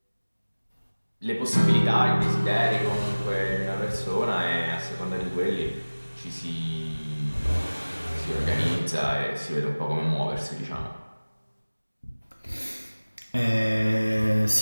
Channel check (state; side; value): inverted; both; correlation -1.00